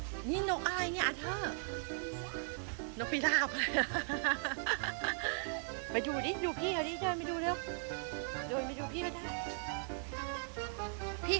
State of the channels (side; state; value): left; silent; 52 dB below the other